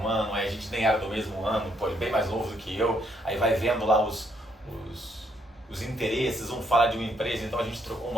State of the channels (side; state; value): both; normal; correlation 0.72